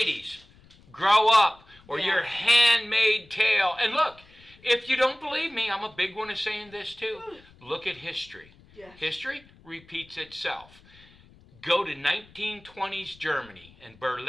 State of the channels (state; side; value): noise; left; rumble, 26 dB below the sound